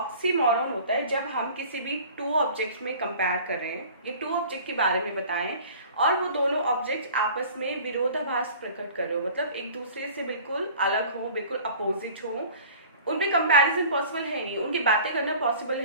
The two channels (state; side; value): inverted; both; correlation -0.45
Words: होता है जब हम किसी भी टू ऑब्जेक्ट्स में कंपेयर कर रहे हैं, ये टू ऑब्जेक्ट के बारे में बताएं, और वो दोनों ऑब्जेक्ट आपस में विरोधाभास प्रकट कर रहे हो, मतलब एक दूसरे से बिल्कुल अलग हो, बिल्कुल अपोजिट हो, उनमें कंपैरिजन पॉसिबल है नहीं, उनकी बातें करना पॉसिबल है